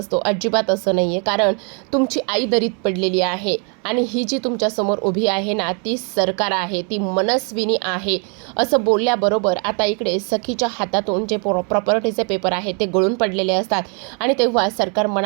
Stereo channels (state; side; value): quieter; left; 38.2 dB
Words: अजिबात असं नाही आहे, कारण तुमची आई दरीत पडलेली आहे आणि ही जी तुमच्यासमोर उभी आहे ना ती सरकार आहे, ती मनस्विनी आहे. असं बोलल्याबरोबर आता इकडे सखीच्या हातातून जे प्रॉपर्टीचे पेपर आहे ते गळून पडलेले असतात आणि तेव्हा सरकार